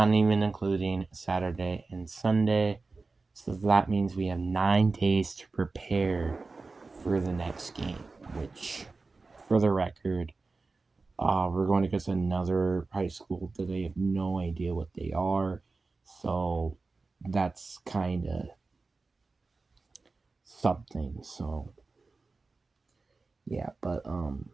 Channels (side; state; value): left; quieter; 3.9 dB